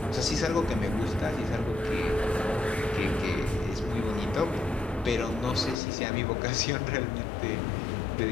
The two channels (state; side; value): drops out; right; at 5.8 s